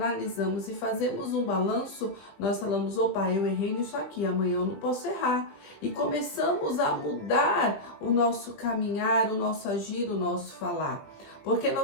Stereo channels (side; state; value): right; late; 20 ms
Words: e fazemos um balanço, nós falamos, opa, eu errei nisso aqui, amanhã eu não posso errar. E começamos a mudar o nosso caminhar, o nosso agir, o nosso falar. Porque